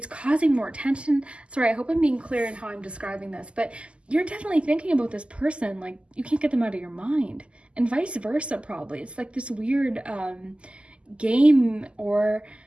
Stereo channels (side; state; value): left; late; 0.054 ms